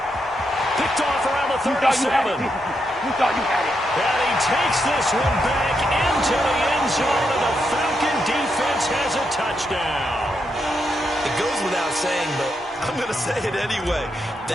Picked off around the 37. You thought you had it. And he takes this one back into the end zone, and the Falcon defense has a touchdown. It goes without saying, but I'm going to say it anyway.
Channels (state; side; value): normal; both; correlation 0.82